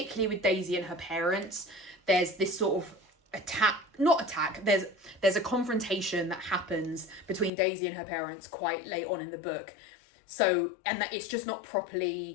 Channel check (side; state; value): right; drops out; at 7.5 s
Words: with Daisy and her parents. There's this sort of there's a confrontation that happens between Daisy and her parents quite late on in the book. So, and that it's just not